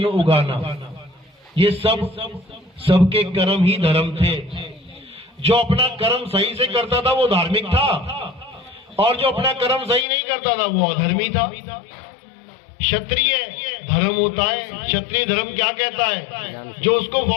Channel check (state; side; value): drops out; right; at 10.1 s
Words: उगाना। ये सबके कर्म ही धर्म थे। जो अपना कर्म सही से करता था वो धार्मिक था, और जो अपना कर्म सही नहीं करता था वो अधर्मी था। क्षत्रिय धर्म होता है। क्षत्रिय धर्म क्या कहता है? जो उसको